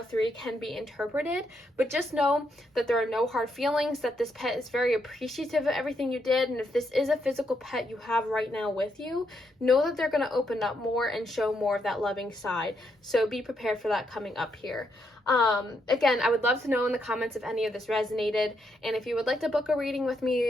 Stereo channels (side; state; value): both; normal; correlation 0.79